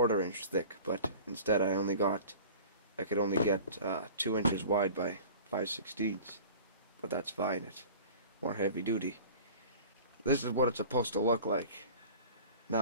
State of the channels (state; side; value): inverted; both; correlation -0.41